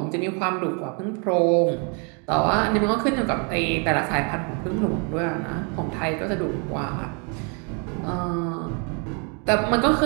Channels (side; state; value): left; quieter; 36.2 dB